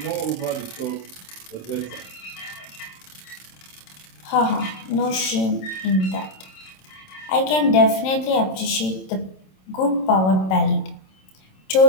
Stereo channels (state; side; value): late; right; 27 ms